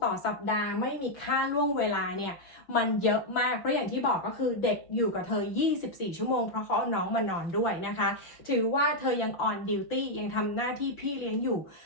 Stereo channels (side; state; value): right; late; 5.9 ms